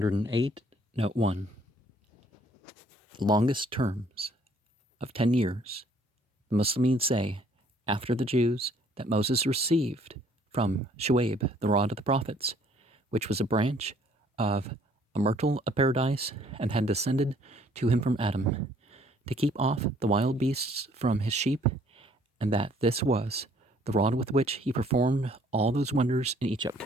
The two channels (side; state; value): both; normal; correlation 0.61